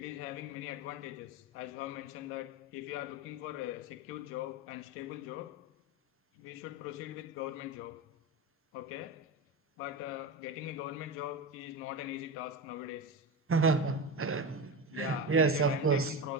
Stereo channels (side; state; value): both; normal; correlation 0.20